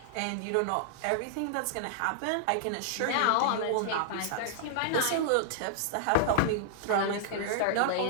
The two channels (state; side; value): different; both; correlation -0.01